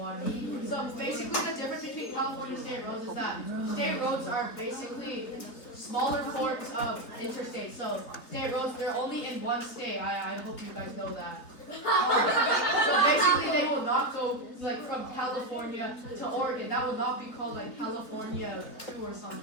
So basically the difference between California state roads is that state roads are basically smaller forms of interstates. So state roads, they're only in one state. I hope you guys know that. So basically they will not go like from California to Oregon. That will not be called like California 2 or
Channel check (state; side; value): late; right; 3.9 ms